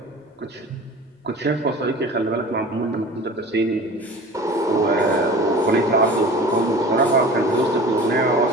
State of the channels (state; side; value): normal; both; correlation 0.39